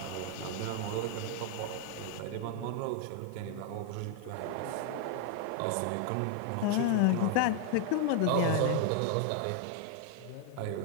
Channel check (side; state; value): both; different; correlation 0.00